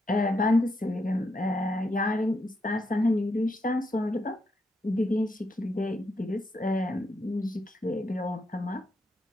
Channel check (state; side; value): normal; both; correlation 0.80